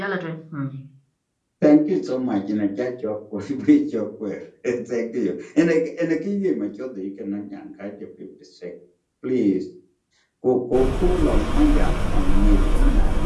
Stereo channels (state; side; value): identical; both; correlation 1.00